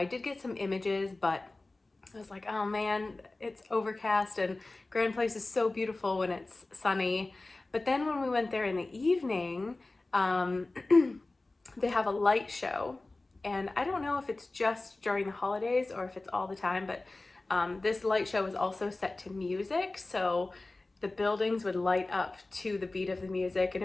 did get some images, but I was like, oh man, it's overcast, and Grand Place is so beautiful when it's sunny. But then when we went there in the evening, they have a light show, and I don't know if it's just during the holidays or if it's all the time, but this light show was also set to music, so the buildings would light up to the beat of the music, and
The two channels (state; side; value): quieter; right; 3.1 dB